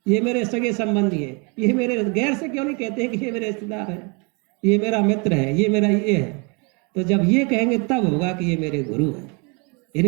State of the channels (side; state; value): left; quieter; 32.2 dB